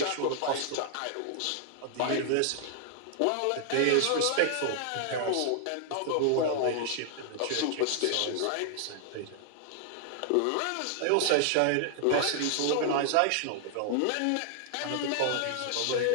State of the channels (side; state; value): both; different; correlation 0.00